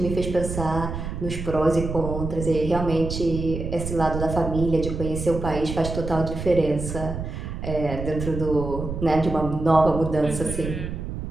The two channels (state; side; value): noise; right; rumble, 6 dB below the sound